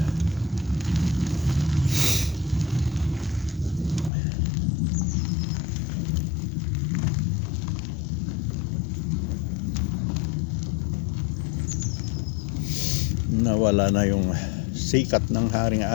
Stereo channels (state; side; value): drops out; right; at 4.1 s